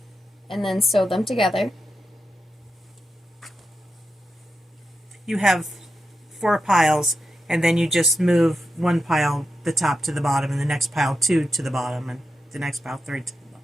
and then sew them together. You have 4 piles, and then you just move one pile, the top to the bottom, and the next pile 2 to the bottom, and the next pile 3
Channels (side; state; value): both; normal; correlation 0.87